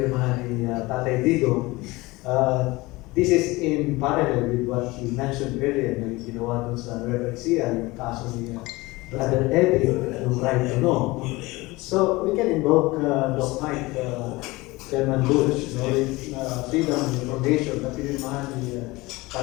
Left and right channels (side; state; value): right; quieter; 21.7 dB